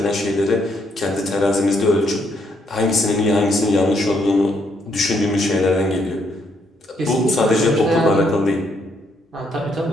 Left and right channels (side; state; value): both; normal; correlation 0.73